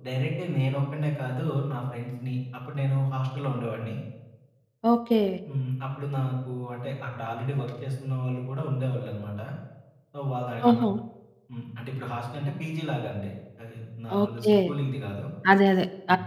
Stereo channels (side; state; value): both; identical; correlation 1.00